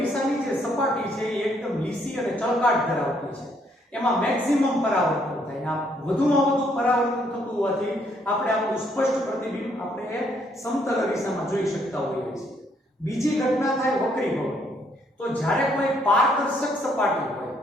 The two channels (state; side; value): normal; both; correlation 0.69